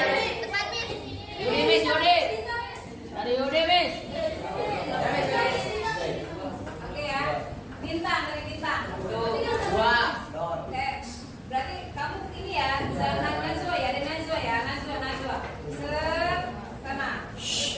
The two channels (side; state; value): both; identical; correlation 1.00